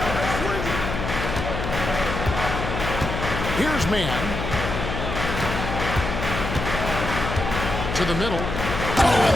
Here's Mann. To the middle. Oh,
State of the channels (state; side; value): noise; left; hum, 4 dB below the sound